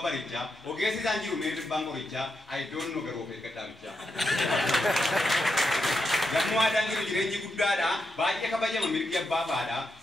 barichaa ogeessi isaan jiru mee dhibbaan qorichaa ayidoon nu garuu eeggadhaabichaa. Yommuu aadaan jiru jireenyi guddaadha baay'ee kabajama mirgi abbaa baadha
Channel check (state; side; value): normal; both; correlation 0.84